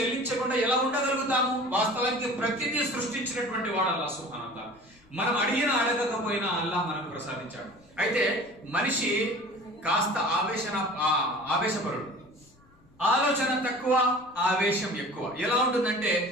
ఎలా ఉండగలుగుతాము? వాస్తవానికి ప్రతిదీ సృష్టించినటువంటి వాడు అల్లాహ్ సుబ్హానహు వ తఆలా. మనం అడిగిన అడగకపోయినా అల్లాహ్ మనకు ప్రసాదించాడు. అయితే మనిషి కాస్త ఆవేశపరుడు, ఆలోచన తక్కువ, ఆవేశం ఎక్కువ. ఎలా ఉంటుందంటే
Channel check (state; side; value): noise; left; rumble, 30 dB below the sound